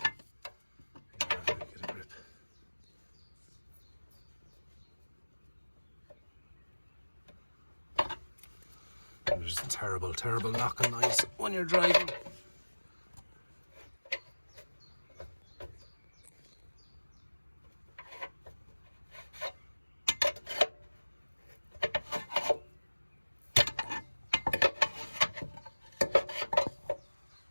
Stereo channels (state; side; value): inverted; both; correlation -1.00